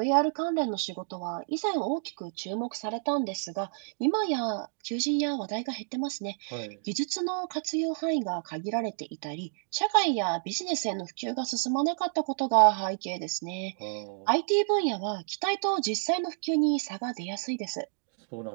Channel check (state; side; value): silent; left; digital silence